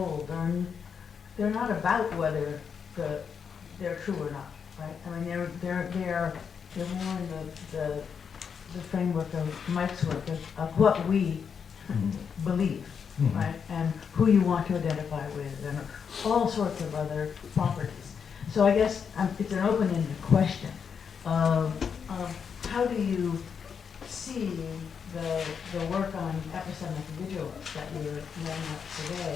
they're not about whether they're true or not, right? I mean, they're more in the framework of Mike's work of what we believe, right? And who you want to identify with, and all sorts of other properties. So I guess it's an open-ended question of how do you see the work on epistemic vigilance that you're laying out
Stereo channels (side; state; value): right; quieter; 6.7 dB